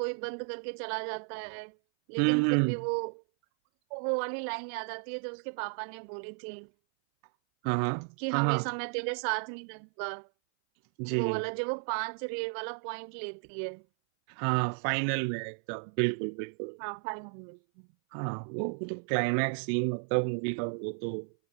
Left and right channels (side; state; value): left; silent; 56 dB below the other